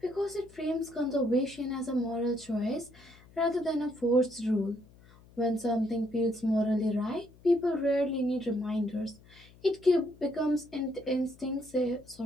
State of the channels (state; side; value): noise; left; hum, 25 dB below the sound